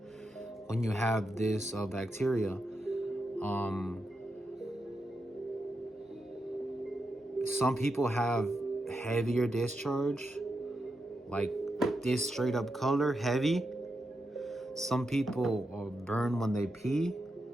when you have this bacteria. Some people have heavier discharge, like this straight up color, heavy. Some people burn when they pee.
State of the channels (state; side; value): normal; both; correlation 0.86